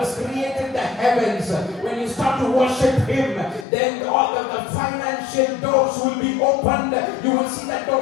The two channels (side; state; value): right; drops out; at 3.7 s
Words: has created the heavens, when you start to worship him, then all the financial doors will be opened. You will see that